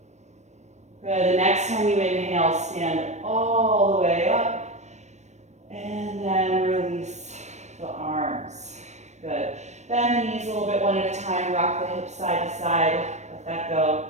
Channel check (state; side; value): late; left; 0.34 ms